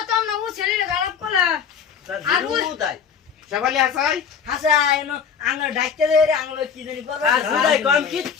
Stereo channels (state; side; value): quieter; right; 7.0 dB